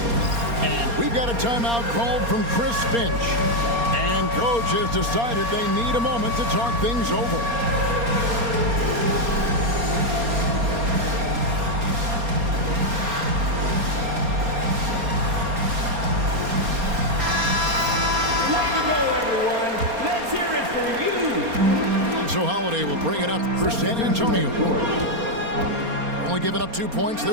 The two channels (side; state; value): left; late; 4.3 ms